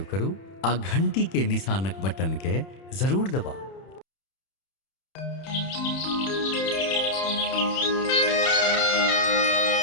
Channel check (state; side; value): late; right; 31 ms